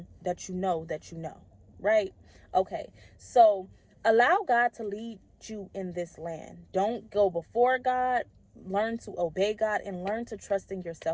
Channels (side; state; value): both; identical; correlation 1.00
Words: that you know that you know, right? Okay, so allow God to lead you in this land. Don't go before God. Learn to obey God and learn to trust in